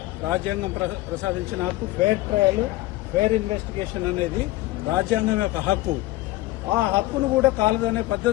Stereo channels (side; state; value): right; quieter; 18.1 dB